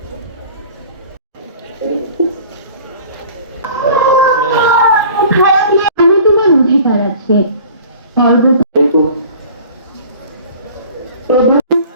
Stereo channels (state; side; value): inverted; both; correlation -0.45